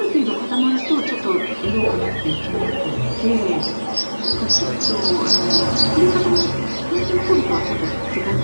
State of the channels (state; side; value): inverted; both; correlation -1.00